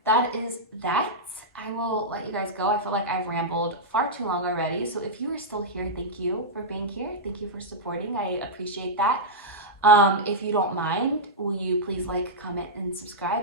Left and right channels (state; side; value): normal; both; correlation -0.09